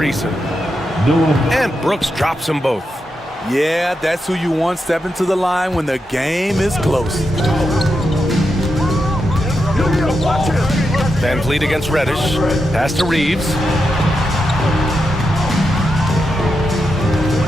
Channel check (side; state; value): both; normal; correlation 0.86